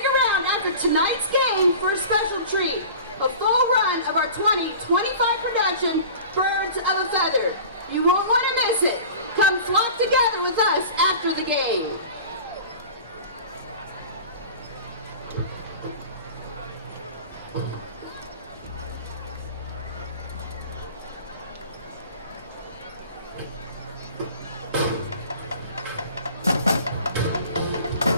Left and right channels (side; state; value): both; inverted; correlation -0.40